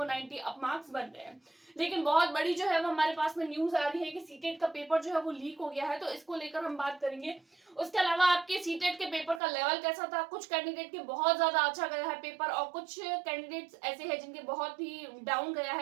90 अप मार्क्स बन रहे हैं। लेकिन बहुत बड़ी जो है वो हमारे पास में न्यूज आ रही है कि सीटेट का पेपर जो है वो लीक हो गया है, तो इसको लेकर हम बात करेंगे। उसके अलावा आपके सीटेट के पेपर का लेवल कैसा था। कुछ कैंडिडेट के बहुत ज्यादा अच्छा गया है पेपर और कुछ कैंडिडेट्स ऐसे हैं जिनके बहुत ही डाउन गया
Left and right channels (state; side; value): drops out; left; at 9.4 s